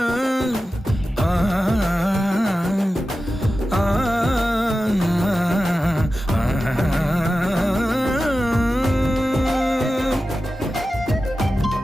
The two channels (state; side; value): normal; both; correlation 0.93